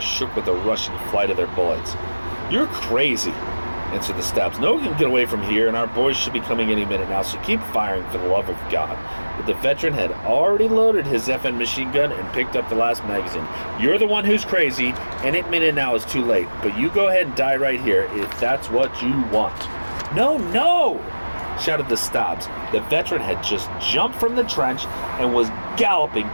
with the rushing flight of their bullets. "You're crazy," answered the Stabs. "No one can get away from here, and our boys should be coming any minute now, so keep firing for the love of God." But the veteran had already loaded his FN machine gun and picked up the last magazine. "You're the one who's crazy. Any minute now is too late, but you go ahead and die right here if that's what you want." "No, no!" shouted the Stabs. The veteran had just jumped from the trench and was galloping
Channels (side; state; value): both; inverted; correlation -1.00